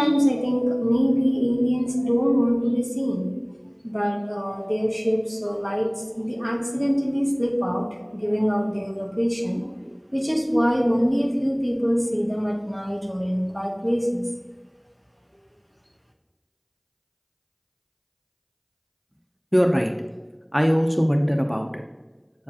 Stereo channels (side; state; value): both; identical; correlation 1.00